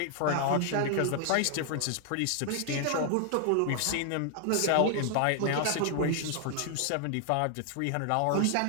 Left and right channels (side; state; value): both; different; correlation 0.00